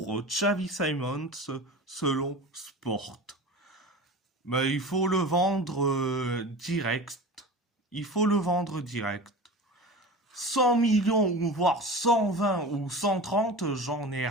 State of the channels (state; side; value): normal; both; correlation 0.33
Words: Xavi Simons selon Sport. Mais il faut le vendre direct. Il faut le vendre direct. 100 millions ou voire 120 ou 130, j'en ai